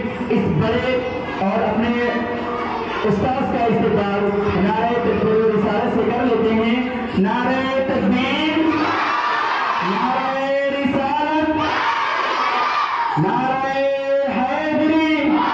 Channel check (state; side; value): identical; both; correlation 1.00